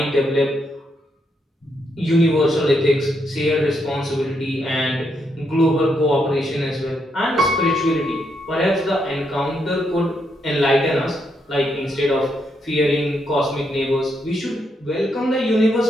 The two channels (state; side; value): normal; both; correlation 0.78